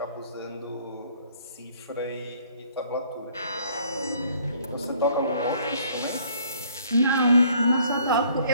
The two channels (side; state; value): both; inverted; correlation -0.60